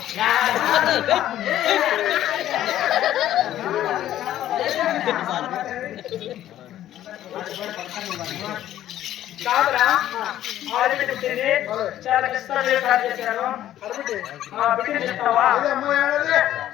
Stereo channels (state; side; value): quieter; right; 12.5 dB